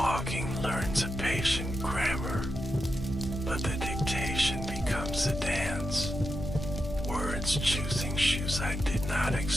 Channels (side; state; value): both; normal; correlation 0.87